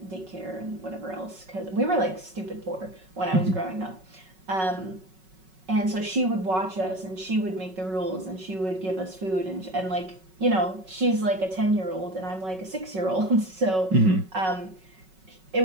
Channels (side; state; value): left; late; 5.4 ms